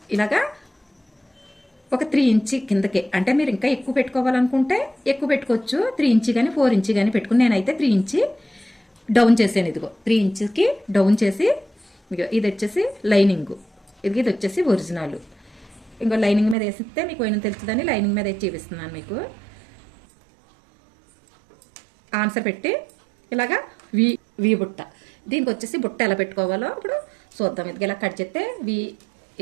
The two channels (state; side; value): drops out; left; at 16.6 s